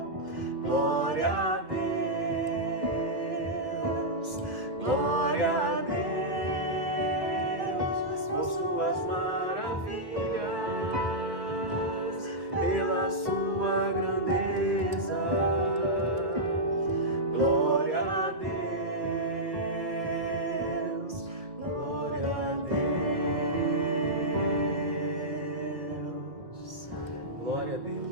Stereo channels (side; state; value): left; late; 2.1 ms